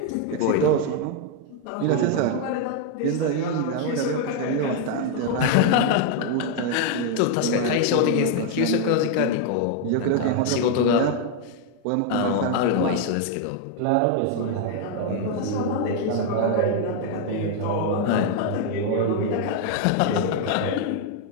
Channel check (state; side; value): different; both; correlation 0.00